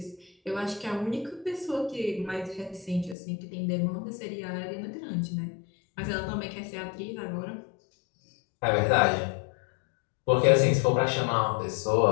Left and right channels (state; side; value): drops out; right; at 3.2 s